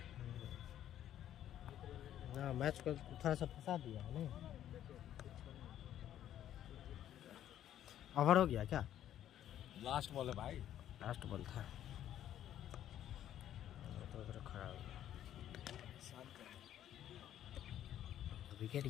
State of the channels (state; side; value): quieter; right; 11.3 dB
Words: ना, मैच को थोड़ा सा फंसा दिया है नहीं? ओवर हो गया क्या? लास्ट बॉल है भाई, लास्ट बॉल था तो उधर खड़ा हो गया। विकेट